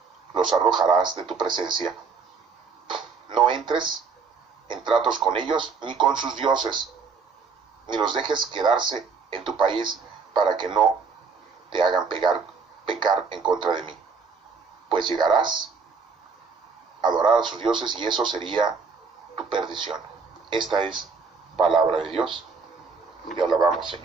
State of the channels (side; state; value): left; quieter; 5.1 dB